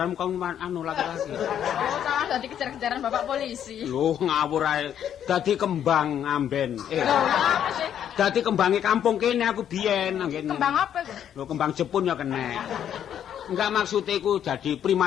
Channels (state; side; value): quieter; right; 9.7 dB